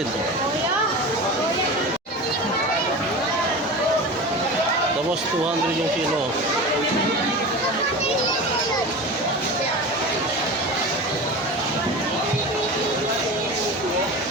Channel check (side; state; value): both; normal; correlation 0.30